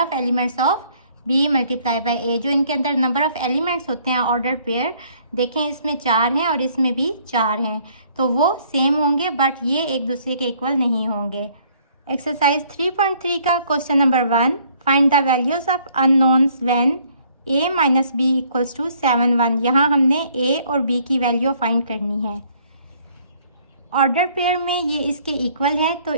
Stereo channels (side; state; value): both; inverted; correlation -0.62